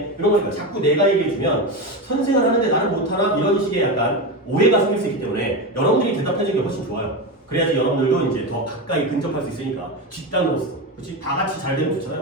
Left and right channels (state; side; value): normal; both; correlation 0.17